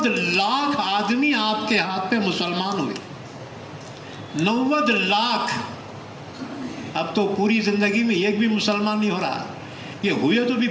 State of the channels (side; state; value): both; identical; correlation 1.00